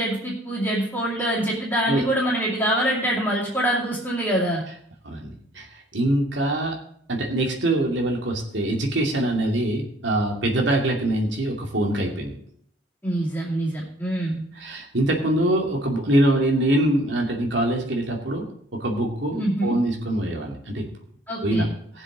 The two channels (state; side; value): normal; both; correlation 0.57